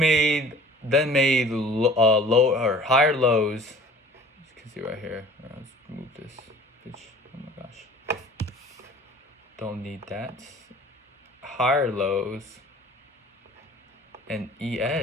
low or higher lows. You can see right here. Let's move this bitch. Oh my gosh, don't need that. Higher lows, and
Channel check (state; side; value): normal; both; correlation 0.47